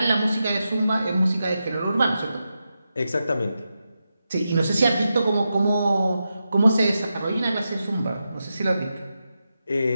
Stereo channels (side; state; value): both; inverted; correlation -0.89